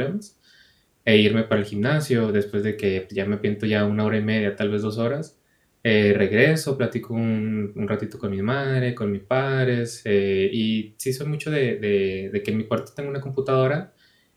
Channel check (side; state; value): both; identical; correlation 1.00